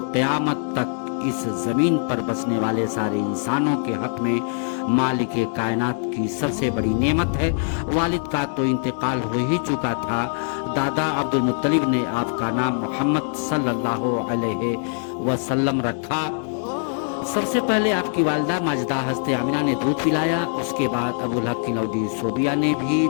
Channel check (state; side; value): silent; right; 64 dB below the other